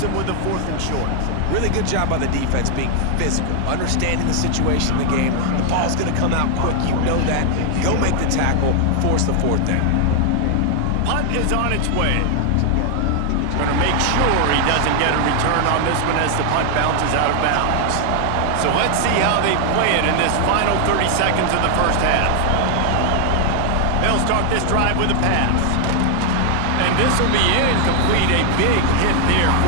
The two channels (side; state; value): both; different; correlation 0.00